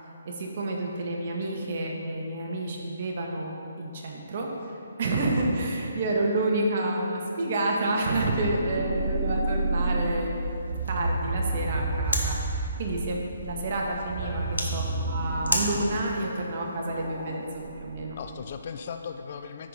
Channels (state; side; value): inverted; both; correlation -0.68